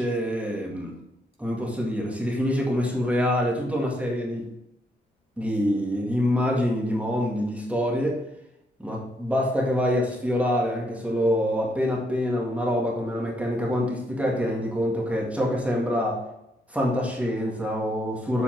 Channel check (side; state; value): both; normal; correlation 0.75